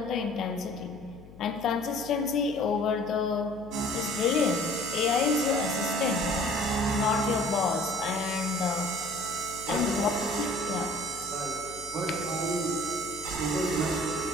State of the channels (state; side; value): noise; left; hum, 19 dB below the sound